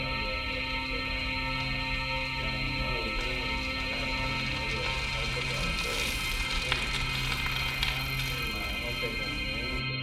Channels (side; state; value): both; identical; correlation 1.00